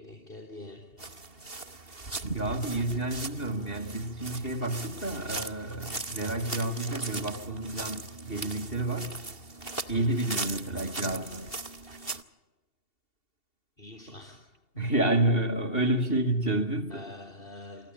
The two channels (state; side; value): late; right; 2.7 ms